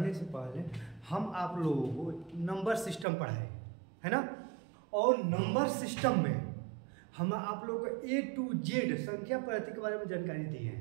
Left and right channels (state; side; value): drops out; left; at 3.1 s